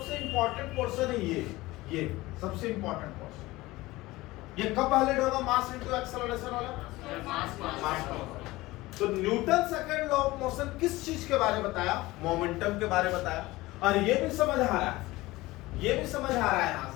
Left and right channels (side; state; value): right; quieter; 19.4 dB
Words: इंपॉर्टेंट पोर्शन है ये सबसे इंपॉर्टेंट पोर्शन। ये कब वैलिड होगा, मास इनटू एक्सेलरेशन वाला, मास तो Newton second law of motion किस चीज के बारे में बताया? मोमेंटम के बारे में बताया। और ये भी समझ आ रहा है, ये भी समझ आ रहा है यहां